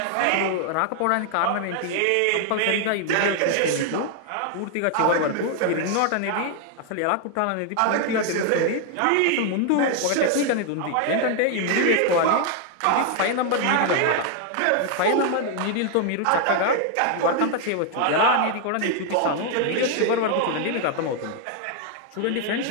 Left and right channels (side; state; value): both; different; correlation 0.00